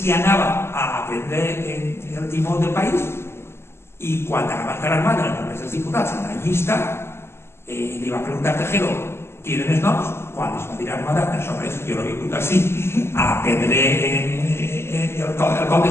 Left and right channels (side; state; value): right; late; 0.12 ms